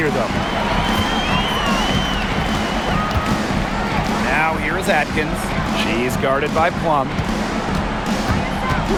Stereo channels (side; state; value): both; identical; correlation 1.00